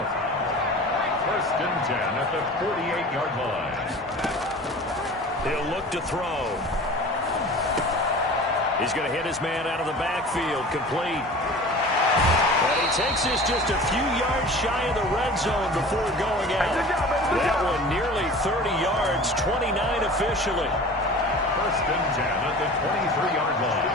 1st and 10 at the 48-yard line. He'll look to throw. He's going to hit his man out of the backfield. Complete. And he takes this just a few yards shy of the red zone before going out. That one nearly 30 yards, 29 officially. 1st and 10 at the 23-yard line.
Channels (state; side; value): normal; both; correlation 0.40